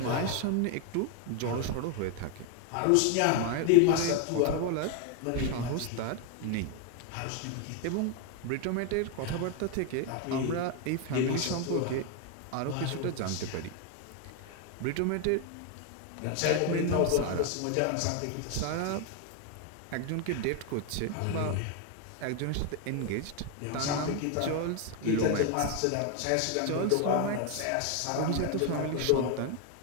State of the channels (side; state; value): both; different; correlation 0.01